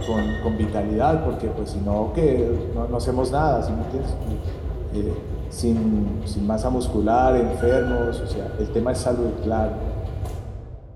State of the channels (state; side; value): identical; both; correlation 1.00